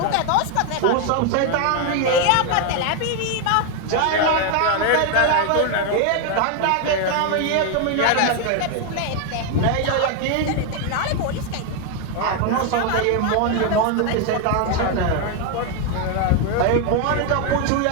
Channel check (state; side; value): different; both; correlation 0.01